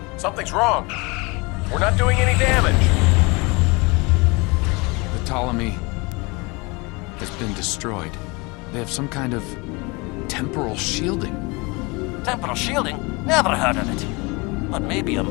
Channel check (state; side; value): quieter; right; 27.1 dB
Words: Something's wrong. We're not doing any damage. The Ptolemy has been destroyed. They have some kind of temporal shielding. Temporal shielding? Never heard of it. But maybe a